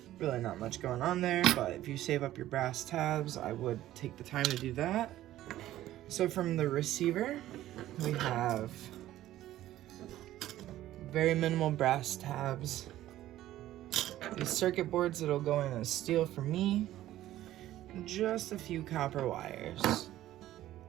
Really not much going on there, but if you save up your brass tabs, I would take the time to do that. So from the receiver, we have very minimal brass tabs. These circuit boards that'll go in as steel for me. Just a few copper wires.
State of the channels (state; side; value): quieter; left; 14.0 dB